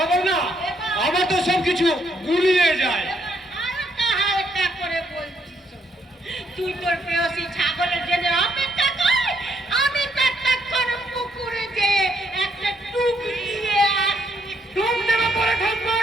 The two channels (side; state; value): both; normal; correlation 0.73